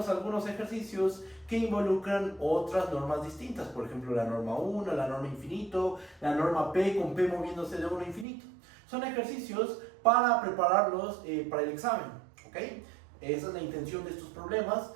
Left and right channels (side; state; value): left; drops out; at 8.2 s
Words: a algunos ejercicios que involucran otras normas distintas, por ejemplo la norma 1, la norma infinito, la norma P con P moviéndose de 1 a infinito. Son ejercicios para prepararlos para el examen. ¿Okay? Esa es la intención de estos problemas,